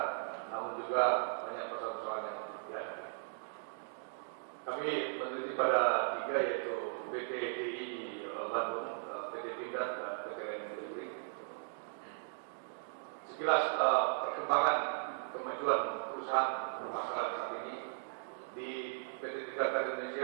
namun juga banyak persoalan-persoalan yang dihadapi. Kami meneliti pada 3, yaitu PT DI di Bandung, PT Pindad, dan PT Listrik. Sekilas perkembangan kemajuan perusahaan bermasalah saat ini di PT Pindad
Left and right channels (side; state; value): left; silent; digital silence